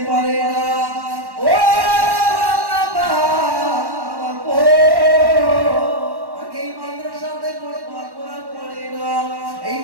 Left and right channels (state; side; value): late; left; 1.1 ms